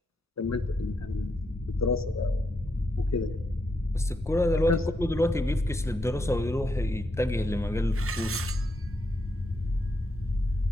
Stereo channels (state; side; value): normal; both; correlation 0.81